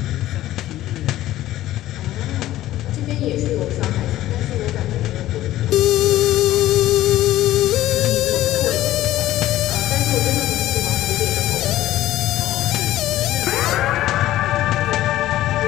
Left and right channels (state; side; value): quieter; right; 14.6 dB